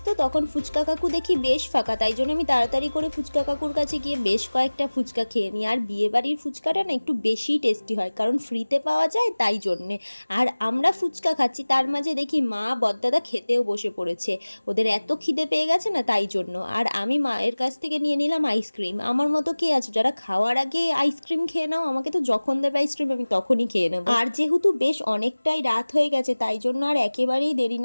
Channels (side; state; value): both; inverted; correlation -1.00